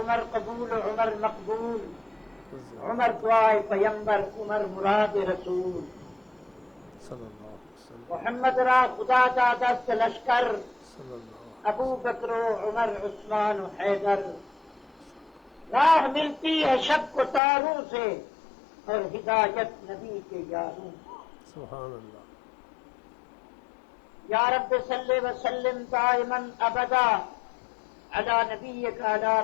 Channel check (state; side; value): drops out; right; at 17.4 s